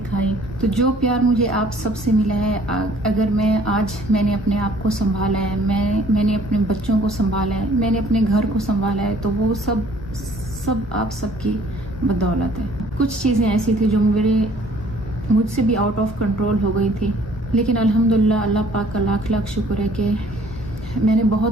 तो जो प्यार मुझे आप सबसे मिला है, अगर मैंने अपने आप को संभाला है, मैंने अपने बच्चों को संभाला है, मैंने अपने घर को संभाला है, तो वो सब आप सबकी बदौलत है। कुछ चीज़ें ऐसी थी जो मुझसे भी आउट ऑफ कंट्रोल हो गई थी, लेकिन अल्हम्दुलिल्लाह अल्लाह पाक का लाख लाख शुक्र है कि मैंने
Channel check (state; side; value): normal; both; correlation 0.56